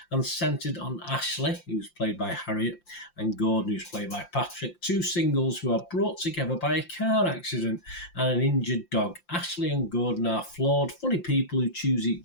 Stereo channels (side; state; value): right; late; 5.7 ms